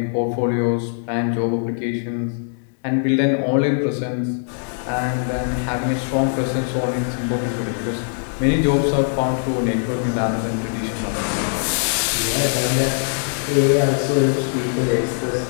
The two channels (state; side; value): silent; right; digital silence